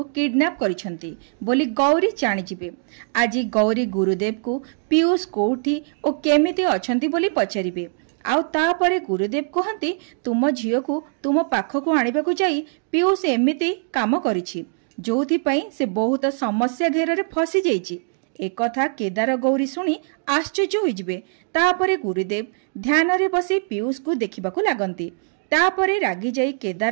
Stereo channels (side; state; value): left; silent; 61 dB below the other